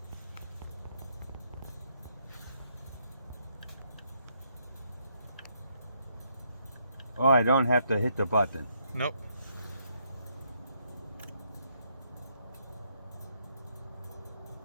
Oh, I don't have to hit the button. Nope.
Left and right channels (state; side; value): inverted; both; correlation -0.74